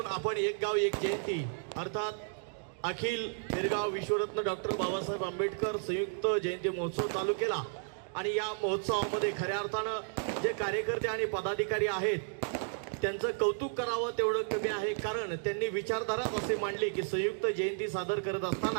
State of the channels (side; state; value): left; silent; digital silence